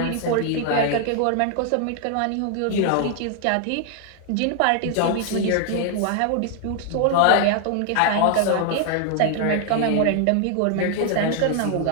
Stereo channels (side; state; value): both; different; correlation 0.00